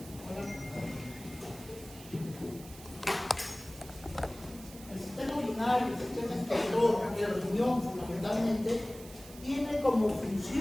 El sistema urinario, el sistema excretor, el riñón fundamentalmente, tiene como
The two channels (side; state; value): right; noise; hiss, 17 dB below the sound